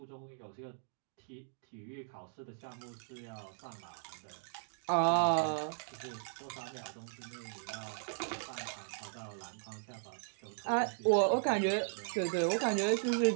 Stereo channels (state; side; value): silent; left; digital silence